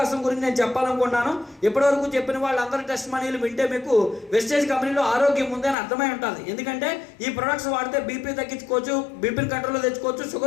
గురించి నేను చెప్పాలనుకున్నాను. ఇప్పటివరకు చెప్పిన వాళ్ళందరి టెస్ట్ మనీలు వింటే మీకు వెస్టేజ్ కంపెనీలో ఆరోగ్యం ఉందని అర్థమై ఉంటుంది. ఎందుకంటే ఈ ప్రొడక్ట్స్ వాడితే బీపీ తగ్గించుకోవచ్చు, బీపీని కంట్రోల్లో తెచ్చుకోవచ్చు,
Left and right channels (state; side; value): drops out; right; at 5.8 s